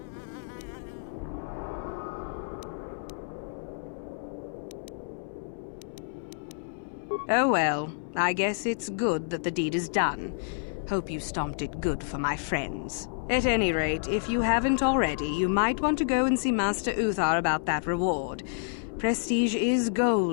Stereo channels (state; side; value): silent; right; 59 dB below the other